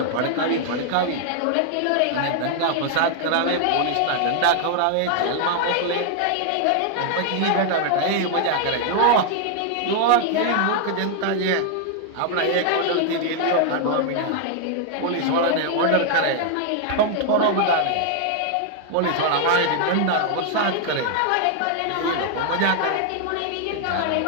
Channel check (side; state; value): both; different; correlation 0.00